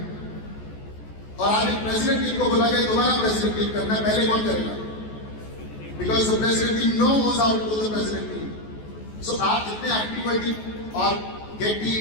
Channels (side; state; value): right; late; 14 ms